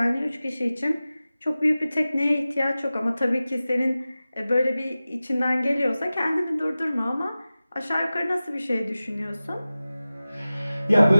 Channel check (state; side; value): inverted; both; correlation -0.96